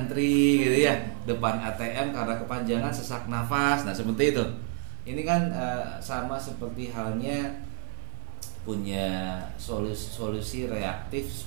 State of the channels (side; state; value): left; silent; 58 dB below the other